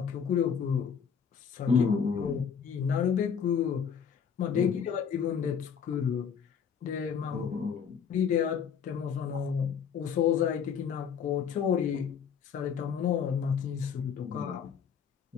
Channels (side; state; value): right; quieter; 7.2 dB